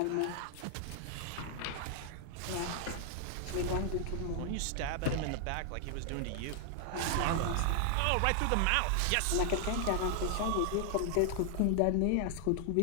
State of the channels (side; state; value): both; different; correlation 0.00